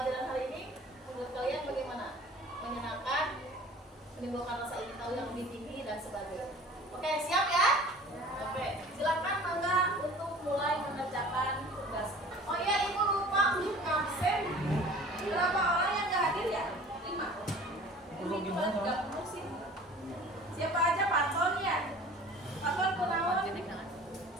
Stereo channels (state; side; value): normal; both; correlation 0.45